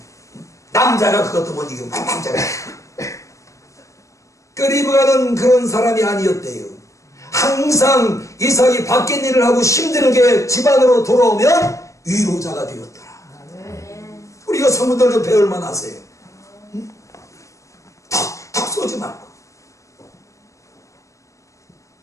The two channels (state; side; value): late; right; 0.15 ms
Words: 남자가 그것도 못 이기고 남자가 그 리브가는 그런 사람이 아니었대요. 항상 이삭이 바뀐 일을 하고 힘들게 집안으로 돌아오면 위로자가 되었더라. 우리가 성도들 좀 배울 만하세요. 턱 쏘지 말고.